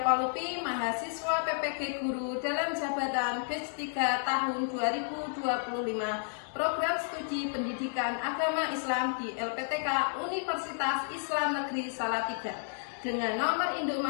Paulupi, mahasiswa PPG Guru dalam jabatan batch 3 tahun 2025, program studi pendidikan agama Islam di LPTK Universitas Islam Negeri Salatiga dengan nomor induk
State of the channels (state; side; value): silent; right; digital silence